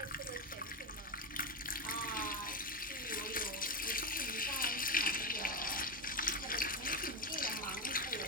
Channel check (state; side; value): normal; both; correlation 0.12